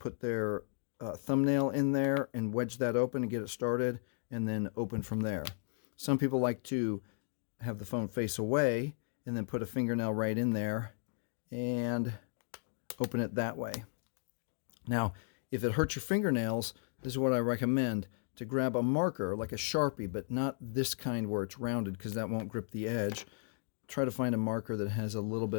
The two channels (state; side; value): silent; right; digital silence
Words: their thumbnail in there and wedge that open and get it started and then open from there. Some people like to have the phone face away and then put a fingernail right in there and open it that way. Now, if it hurts your fingernails, this is what I recommend: to grab a marker like a Sharpie, but not this kind where it's rounded because that won't grip the edge. Try to find a marker that has a little